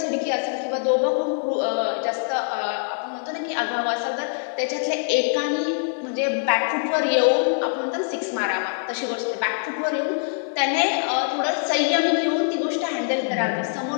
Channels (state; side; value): silent; right; digital silence